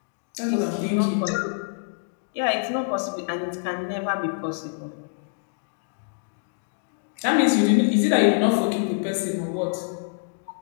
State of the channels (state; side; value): silent; right; digital silence